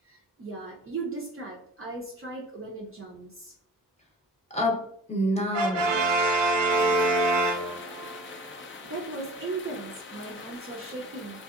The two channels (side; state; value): both; normal; correlation 0.41